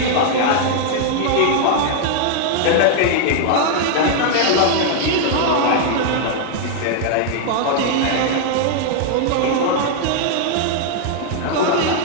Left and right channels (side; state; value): both; different; correlation 0.00